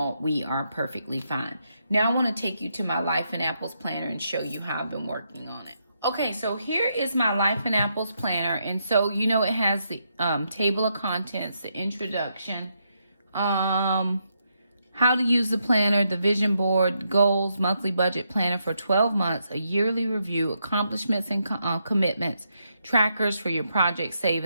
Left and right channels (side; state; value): both; inverted; correlation -0.80